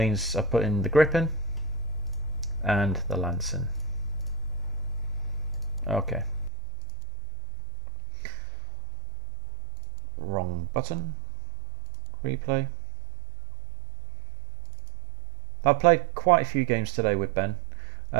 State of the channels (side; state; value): left; drops out; at 6.5 s